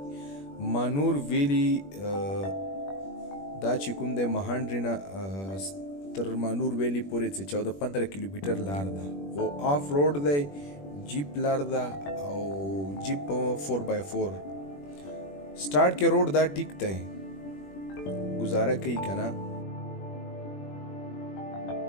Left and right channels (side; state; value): right; late; 21 ms